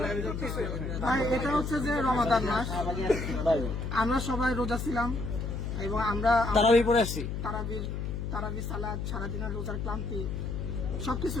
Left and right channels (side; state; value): left; noise; hum, 4 dB below the sound